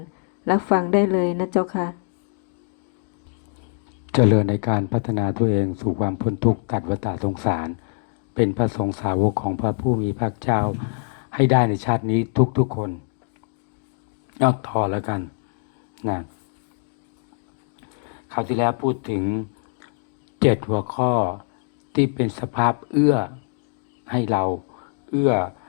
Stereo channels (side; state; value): right; silent; digital silence